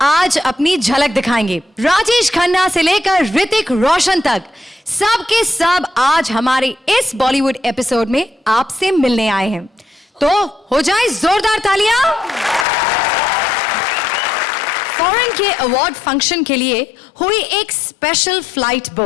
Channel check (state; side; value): drops out; right; at 12.7 s